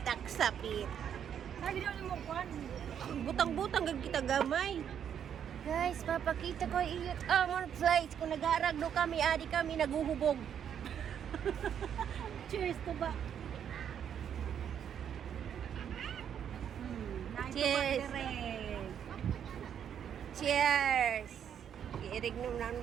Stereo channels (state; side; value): quieter; left; 8.8 dB